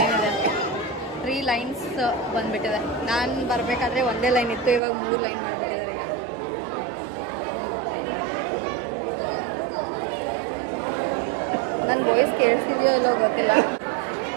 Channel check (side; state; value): left; drops out; at 4.8 s